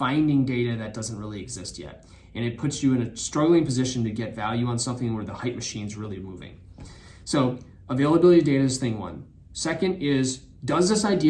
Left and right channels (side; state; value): both; identical; correlation 1.00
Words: data that doesn't really exist yet. And it puts you in a struggling position to get value on something where the hype machine's really moving. So availability of data is thing one. Second is, does this